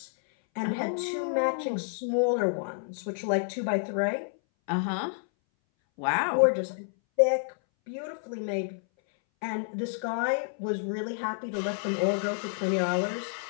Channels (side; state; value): right; silent; 58 dB below the other